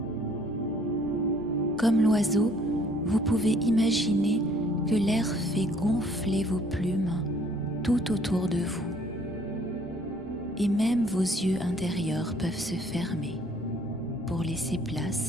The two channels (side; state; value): both; normal; correlation 0.60